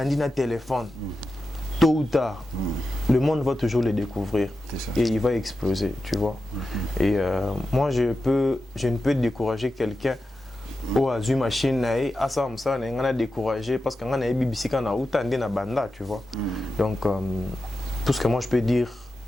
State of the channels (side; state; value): both; normal; correlation 0.91